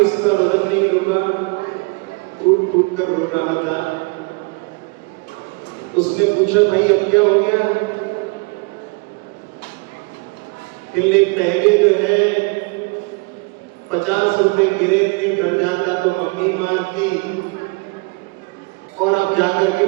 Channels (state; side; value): quieter; left; 29.8 dB